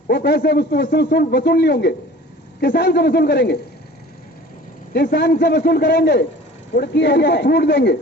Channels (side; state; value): both; normal; correlation 0.44